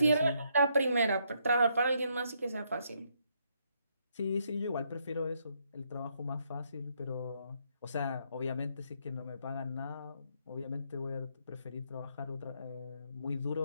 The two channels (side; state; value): both; inverted; correlation -0.74